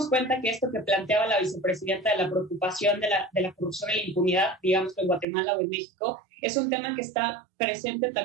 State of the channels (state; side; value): drops out; left; at 5.2 s